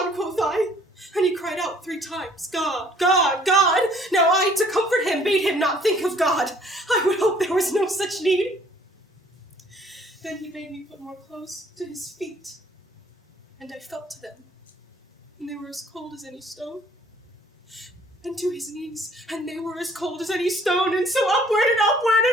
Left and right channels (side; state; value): both; normal; correlation 0.58